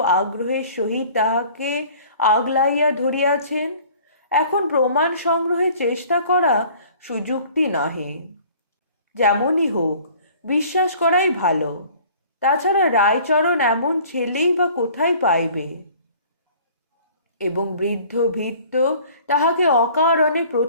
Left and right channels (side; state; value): both; inverted; correlation -0.50